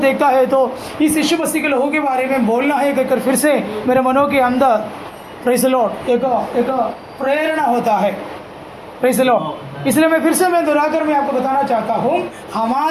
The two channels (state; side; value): identical; both; correlation 1.00